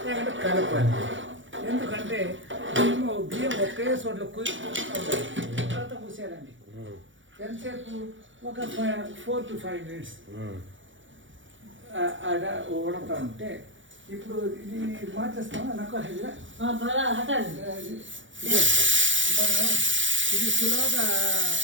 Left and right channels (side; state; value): left; late; 0.56 ms